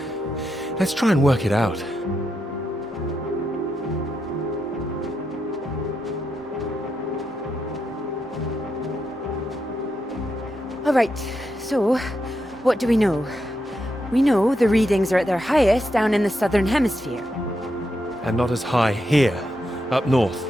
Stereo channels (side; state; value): both; normal; correlation 0.84